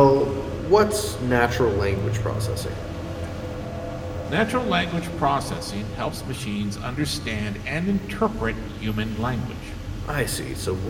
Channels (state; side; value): identical; both; correlation 1.00